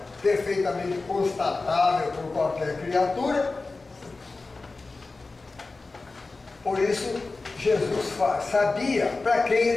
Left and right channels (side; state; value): right; quieter; 3.6 dB